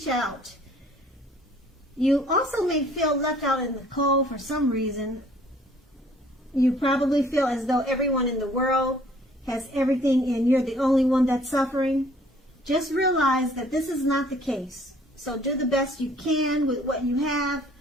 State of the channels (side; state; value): both; normal; correlation 0.58